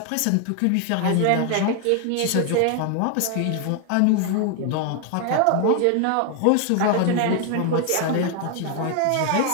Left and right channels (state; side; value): different; both; correlation 0.00